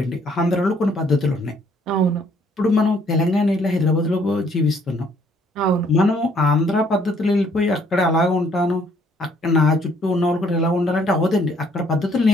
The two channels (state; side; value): normal; both; correlation 0.64